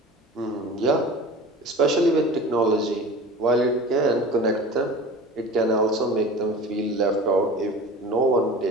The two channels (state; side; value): normal; both; correlation 0.38